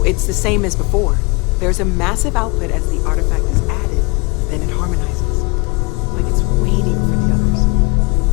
it's the same as before. There's a massive output as the artifact is added, then it harmonizes. Like it's waiting for the others.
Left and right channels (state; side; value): quieter; right; 28.3 dB